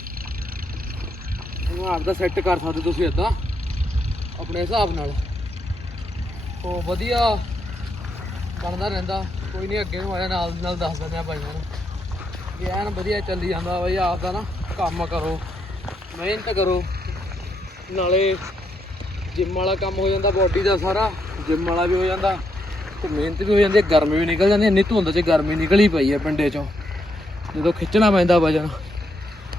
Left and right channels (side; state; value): both; normal; correlation 0.78